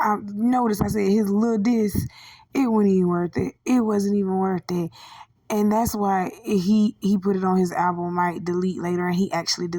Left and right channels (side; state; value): both; identical; correlation 1.00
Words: I said his little diss, it wasn't even worth it. It wasn't even worth it. And that's why he put it on his album, might delete later, and he actually